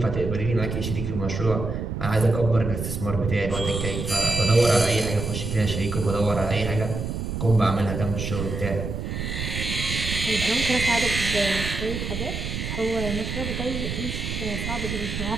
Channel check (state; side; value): noise; right; rumble, 4 dB below the sound